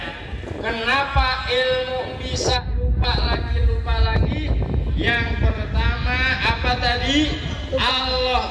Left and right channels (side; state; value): both; identical; correlation 1.00